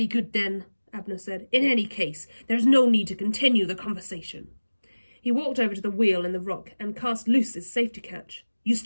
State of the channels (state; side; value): inverted; both; correlation -1.00